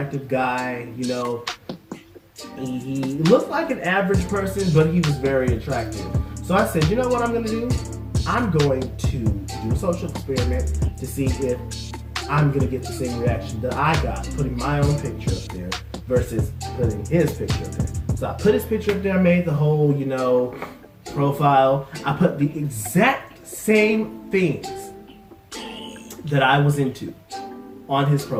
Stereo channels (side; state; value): both; identical; correlation 1.00